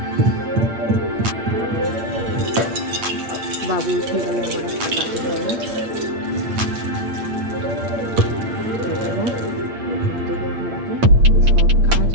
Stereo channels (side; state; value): left; late; 8.7 ms